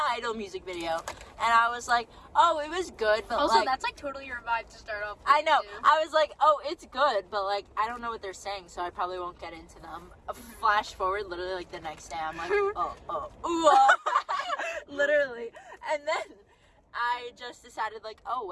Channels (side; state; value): both; identical; correlation 1.00